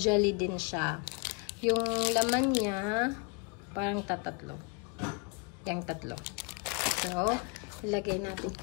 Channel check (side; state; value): right; quieter; 32.5 dB